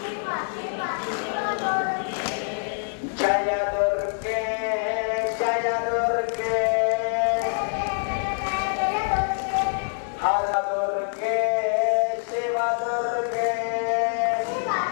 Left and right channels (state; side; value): silent; right; 62 dB below the other